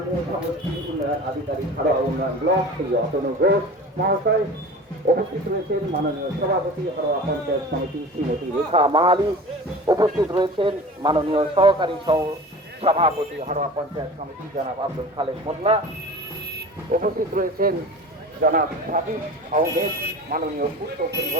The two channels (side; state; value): both; normal; correlation 0.37